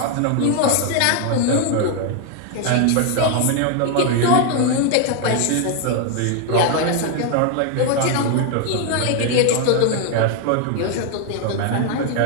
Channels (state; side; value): different; both; correlation 0.01